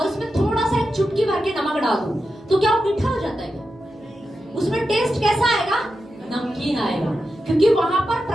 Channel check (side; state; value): left; noise; hum, 29 dB below the sound